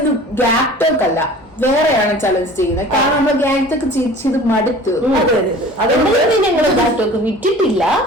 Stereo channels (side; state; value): both; normal; correlation 0.43